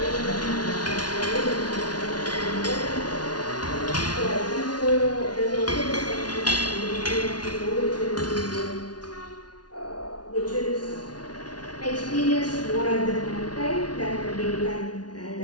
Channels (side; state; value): right; late; 0.69 ms